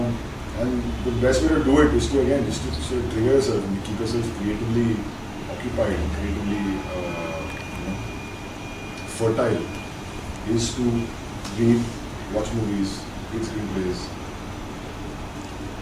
the best way to do it is to sort of trigger yourself and keep yourself creatively occupied and creatively fertile. Is to read, watch movies, read screenplays.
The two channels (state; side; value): identical; both; correlation 1.00